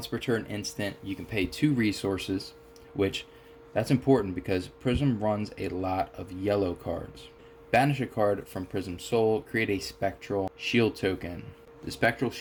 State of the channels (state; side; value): identical; both; correlation 1.00